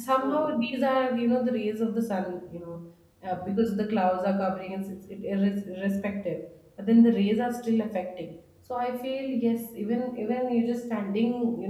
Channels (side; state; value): both; identical; correlation 1.00